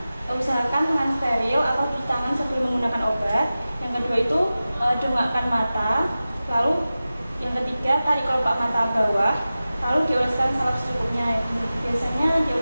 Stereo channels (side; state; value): both; inverted; correlation -0.95